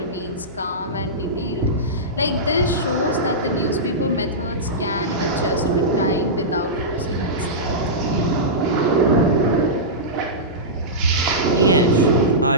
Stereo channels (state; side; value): normal; both; correlation -0.15